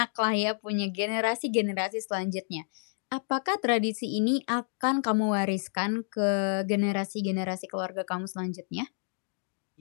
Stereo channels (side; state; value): right; silent; 58 dB below the other